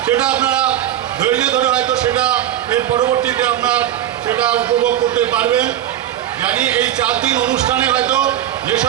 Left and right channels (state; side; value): quieter; left; 11.7 dB